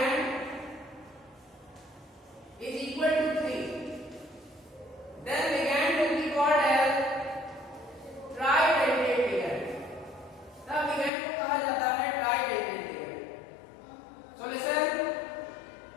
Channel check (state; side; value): drops out; right; at 11.1 s